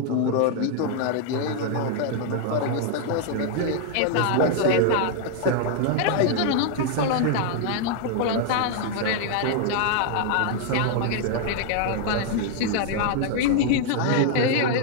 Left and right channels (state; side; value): different; both; correlation 0.00